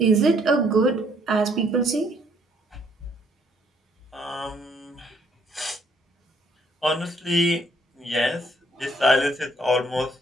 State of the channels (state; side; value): normal; both; correlation 0.67